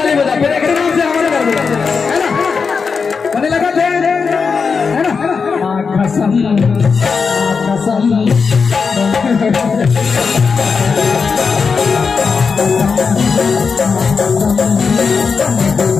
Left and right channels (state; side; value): quieter; right; 5.3 dB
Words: बजा फिर एक नाम से हमारे कर दिया है ना, बने लगा थे है ना। कसम कसम